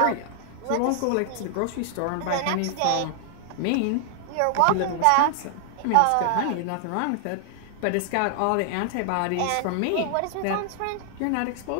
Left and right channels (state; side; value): different; both; correlation 0.00